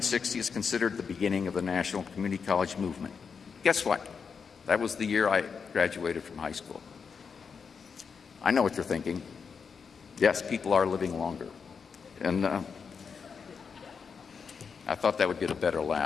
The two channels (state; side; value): quieter; right; 5.9 dB